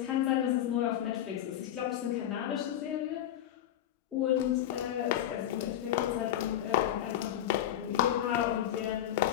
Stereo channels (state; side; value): quieter; right; 11.7 dB